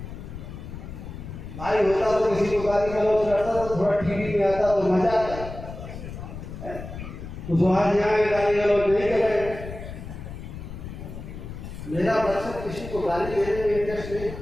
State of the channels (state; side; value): noise; left; rumble, 10 dB below the sound